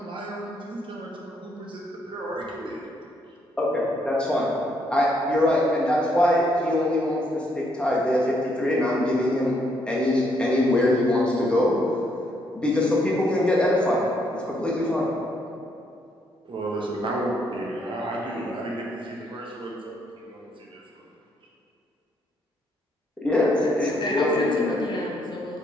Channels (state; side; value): normal; both; correlation 0.73